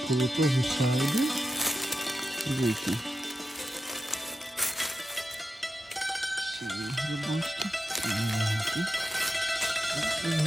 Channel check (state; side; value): normal; both; correlation 0.90